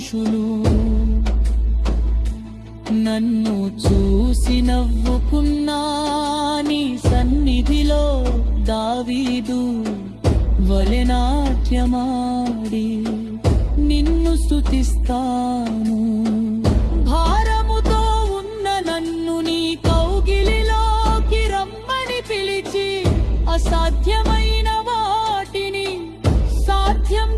నన్ను చూసి నవ్వుకున్నా, నీ సన్నిధిలో దావీదు వలె నాట్యమాడి నిన్ను స్తుతిస్తాను. భారముతో ఉన్న నన్ను నీ కౌగిలిలోకి రమ్మని పిలిచి, అసాధ్యమైన వాటిని సాధ్యం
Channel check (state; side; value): identical; both; correlation 1.00